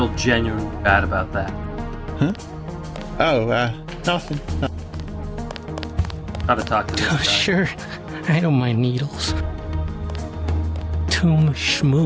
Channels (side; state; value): both; identical; correlation 1.00